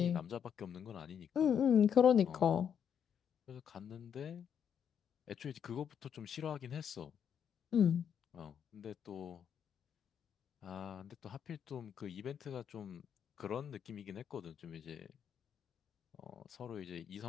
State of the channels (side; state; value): right; quieter; 8.2 dB